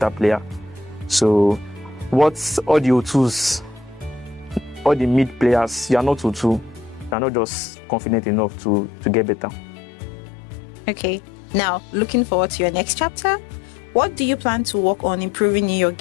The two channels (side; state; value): right; drops out; at 7.2 s